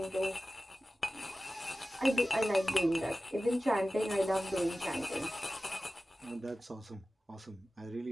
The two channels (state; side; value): normal; both; correlation 0.95